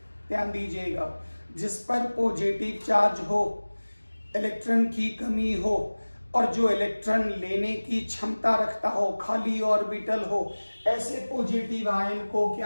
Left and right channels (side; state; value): both; inverted; correlation -1.00